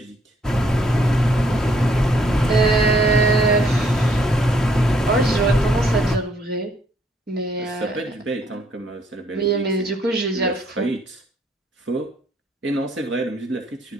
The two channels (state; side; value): normal; both; correlation 0.68